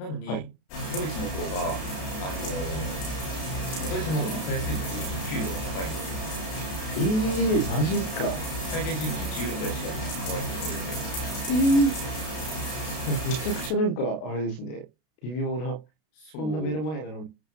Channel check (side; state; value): right; late; 32 ms